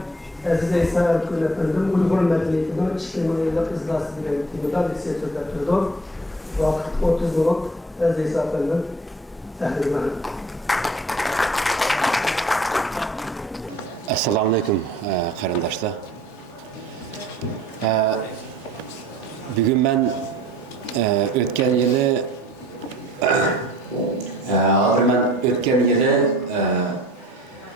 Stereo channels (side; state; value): both; normal; correlation 0.49